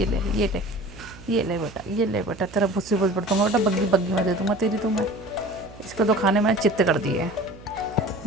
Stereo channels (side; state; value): right; noise; hum, 19 dB below the sound